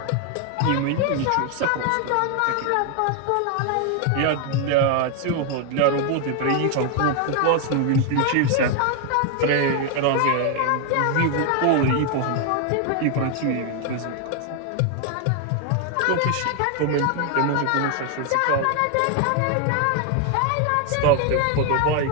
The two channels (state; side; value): different; both; correlation 0.00